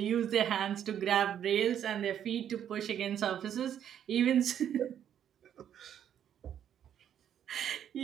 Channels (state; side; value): quieter; left; 9.6 dB